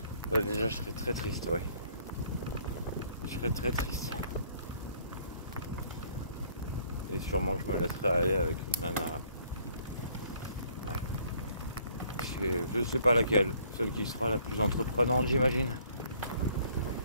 je serais très triste, ouais. Je serais très triste. Et sûrement que je me laisserai aller avec une nana. Ouais. Je sais pas laquelle, celle qui sera la plus entreprenante, j'imagine.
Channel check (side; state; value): both; inverted; correlation -0.61